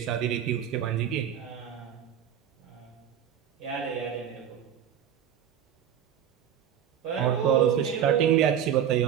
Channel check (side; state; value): left; quieter; 9.4 dB